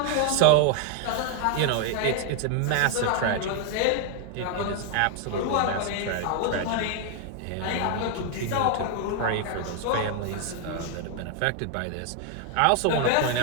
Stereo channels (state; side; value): different; both; correlation 0.01